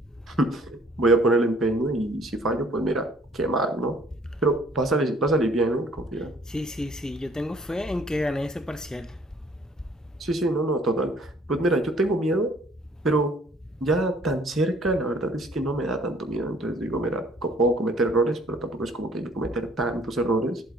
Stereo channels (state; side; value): normal; both; correlation 0.58